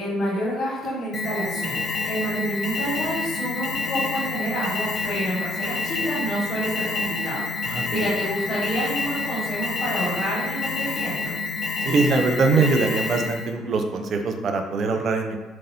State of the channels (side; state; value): both; normal; correlation 0.66